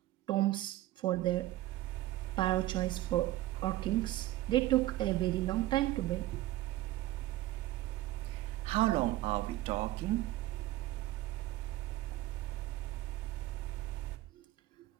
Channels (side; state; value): left; quieter; 16.2 dB